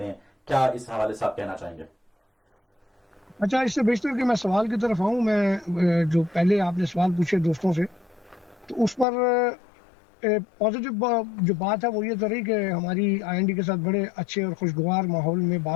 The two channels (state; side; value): drops out; right; at 9.1 s